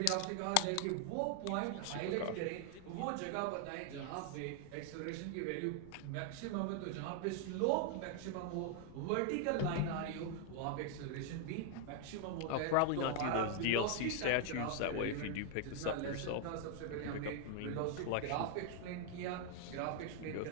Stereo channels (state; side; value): different; both; correlation 0.00